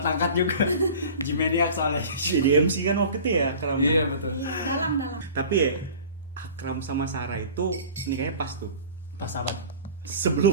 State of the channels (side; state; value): both; inverted; correlation -0.41